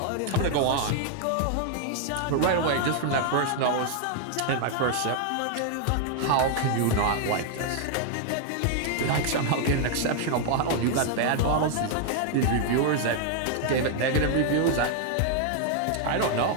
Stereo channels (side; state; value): both; different; correlation 0.00